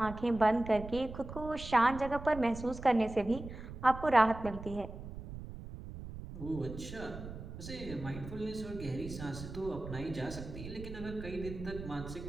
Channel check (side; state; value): right; noise; rumble, 11 dB below the sound